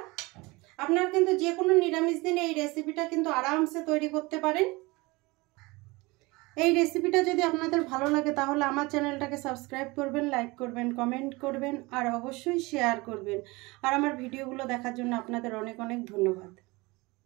আপনারা কিন্তু যে কোনো নিরামিষ দিনে এই রেসিপিটা কিন্তু আরামসে তৈরি করতে পারেন। এই রেসিপিটা যদি আপনাদের ভালো লাগে তাহলে আমার চ্যানেলটাকে সাবস্ক্রাইব করবেন, লাইক করবেন, কমেন্ট করবেন আর অবশ্যই শেয়ার করবেন। আর আমার ভিডিওগুলো দেখার জন্য আপনাদের অনেক অনেক ধন্যবাদ।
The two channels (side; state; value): left; quieter; 23.7 dB